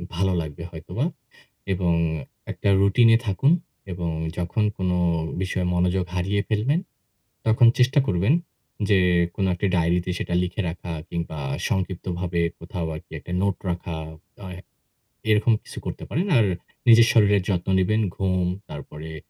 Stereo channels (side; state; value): both; identical; correlation 1.00